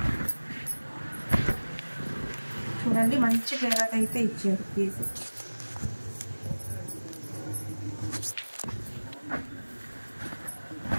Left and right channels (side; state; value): both; inverted; correlation -1.00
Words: చూడండి మంచి గేరాక్ అయితే ఇచ్చారు పీస్.